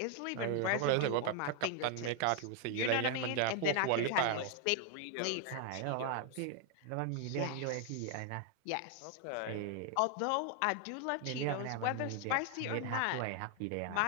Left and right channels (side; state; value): both; different; correlation 0.00